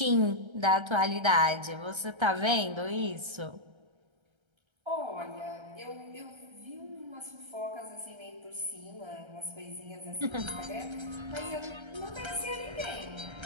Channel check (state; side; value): late; left; 1.3 ms